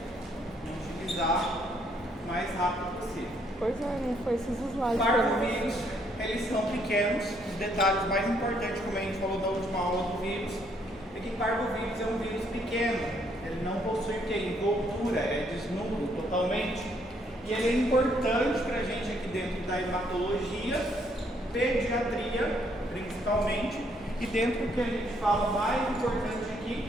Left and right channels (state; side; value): normal; both; correlation 0.69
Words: Vamos utilizar o mais rápido possível. Pois é, não foi esses slides. Parvovírus, eles são pequenos. Os detalhes mais importantes, como a gente falou na última aula do vírus, é que parvovírus é um vírus pequeno. Ele não possui envoltura, é desnudo totalmente. E ele é importante para a gente aqui dentro da hematologia, pediatria principalmente, e dentro do que a gente fala mais importante